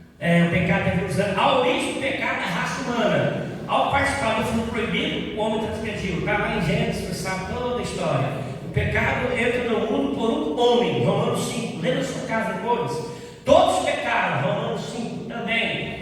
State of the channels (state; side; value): identical; both; correlation 1.00